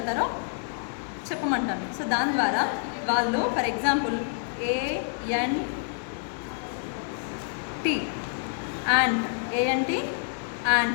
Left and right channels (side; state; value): right; silent; digital silence